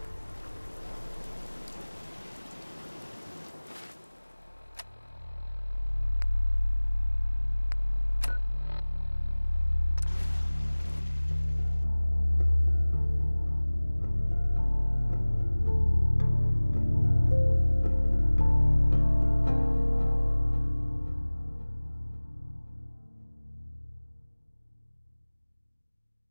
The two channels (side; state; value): both; inverted; correlation -1.00